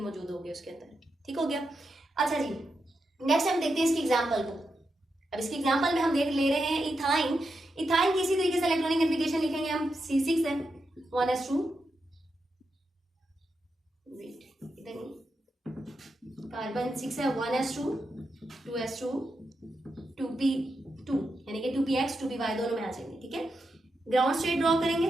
होंगे उसके अंदर। ठीक हो गया। अच्छा जी, नेक्स्ट हम देखते हैं इसकी एग्जांपल को। अब इसकी एग्जांपल में हम देख ले रहे हैं इथाइन। इथाइन की इसी तरीके से इलेक्ट्रॉनिक कन्फिगरेशन लिखेंगे हम, C6 है 1s2, इधर नहीं, कार्बन 6 है 1s2, 2s2, 2p2, यानी कि 2px 2py दोनों में आ जाएंगे। ठीक है, ग्राउंड स्टेट ड्रॉ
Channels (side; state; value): both; normal; correlation 0.86